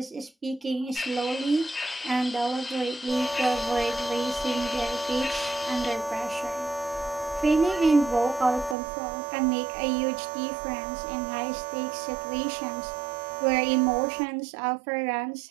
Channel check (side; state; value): left; drops out; at 8.8 s